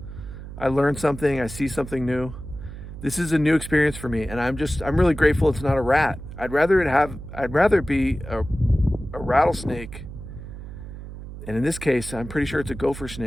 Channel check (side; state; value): right; noise; hum, 12 dB below the sound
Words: I learn something. I see something new. This is a new experience for me, and I'm really grateful it's not a rat. I'd rather it be a rattlesnake, and in this case, I'm pretty sure it's a gopher